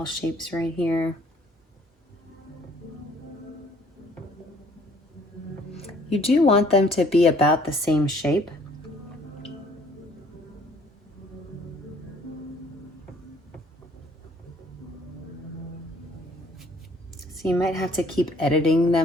shapes right here. You do want them to be about the same shape. So you might have to keep editing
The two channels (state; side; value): normal; both; correlation 0.59